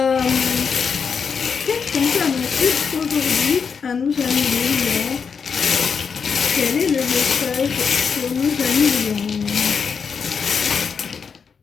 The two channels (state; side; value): quieter; right; 6.1 dB